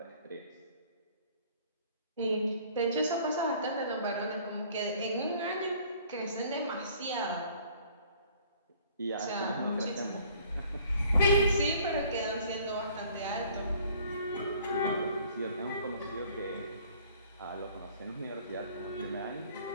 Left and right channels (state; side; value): inverted; both; correlation -0.55